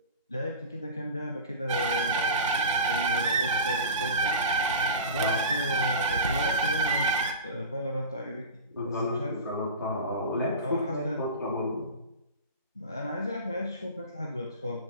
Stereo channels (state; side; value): inverted; both; correlation -0.31